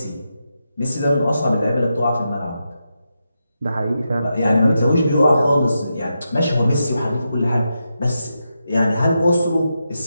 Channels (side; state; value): both; inverted; correlation -0.86